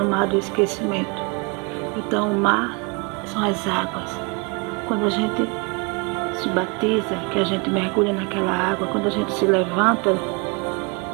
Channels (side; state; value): left; quieter; 30.8 dB